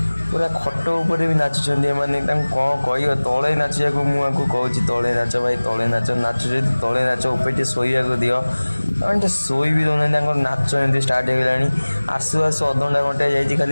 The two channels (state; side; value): inverted; both; correlation -1.00